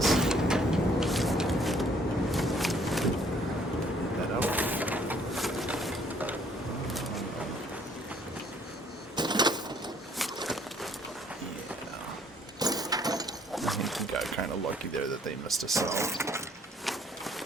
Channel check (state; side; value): normal; both; correlation 0.62